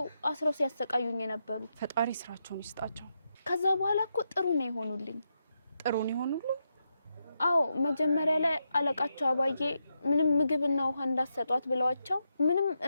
አስረው ሲያሰቃዩኝ የነበሩት። ፈጣሪ ስራቸውን ይስጣቸው። ከዛ በኋላ እኮ ጥሩ ነው የሆኑልኝ። ጥሩ ነው የሆኑልኝ? አዎ፣ መጀመሪያ ላይ አለቃቸው አባዬ ምንም ምግብና ውሃ እንዳሰጧት ብለዋቸው ምንም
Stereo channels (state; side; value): inverted; both; correlation -0.84